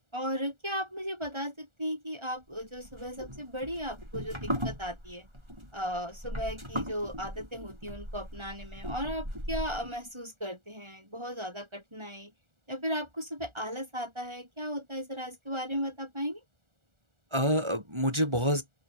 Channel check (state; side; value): late; left; 1.4 ms